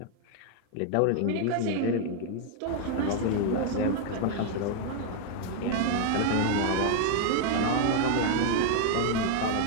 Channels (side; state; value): both; different; correlation 0.00